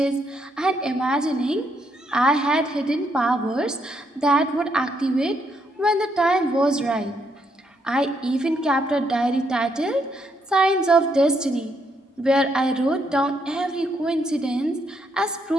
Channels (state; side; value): normal; both; correlation 0.75